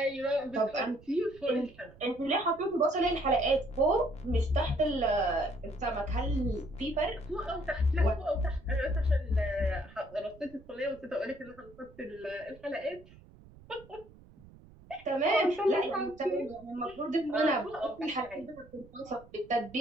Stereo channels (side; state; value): right; noise; rumble, 22 dB below the sound